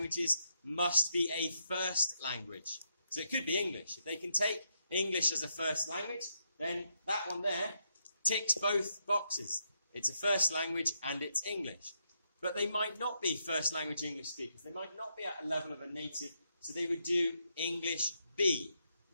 must be a first language. So it could be English. If they can take English as a first language, then that one there ticks both boxes. It's a first language and it's English. But they might not be first language English speakers. They might not be at a level of a native, so they would do English B.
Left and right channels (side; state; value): both; inverted; correlation -0.79